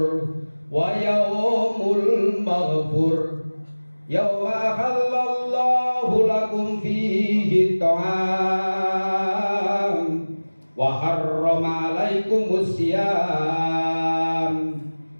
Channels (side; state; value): both; inverted; correlation -1.00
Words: wa yaumul maghfur yauma halallahu lakum fihi ta'am wa harrama alaikumus siyam